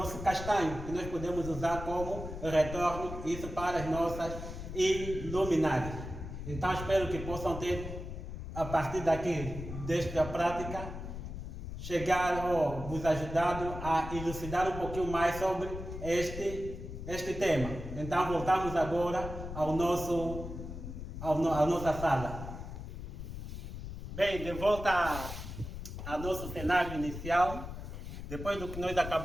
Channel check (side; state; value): left; noise; rumble, 8 dB below the sound